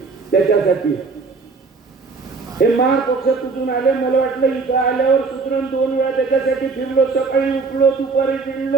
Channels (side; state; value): left; quieter; 4.4 dB